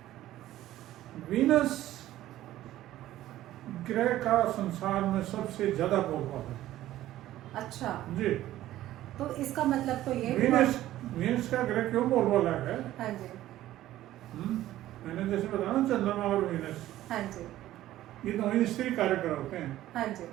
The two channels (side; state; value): left; quieter; 14.2 dB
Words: वीनस ग्रह का संसार में सबसे ज्यादा बोलबाला है। अच्छा, जी, तो इसका मतलब तो ये हुआ। वीनस वीनस का ग्रह क्यों बोलबाला है? हाँ जी। मैंने जैसे बताया ना, चंद्रमा और वीनस, हाँ जी। ये दोनों स्त्री कार्यक्रम होते हैं। हाँ जी।